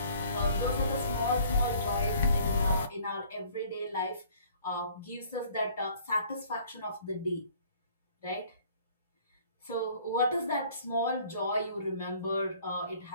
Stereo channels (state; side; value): inverted; both; correlation -0.55